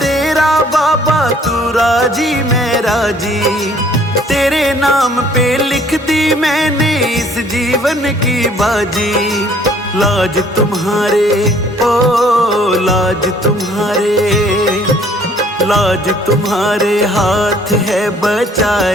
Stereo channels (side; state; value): both; normal; correlation 0.58